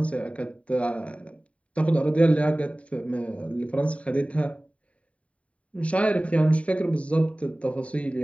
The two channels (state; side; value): late; right; 0.065 ms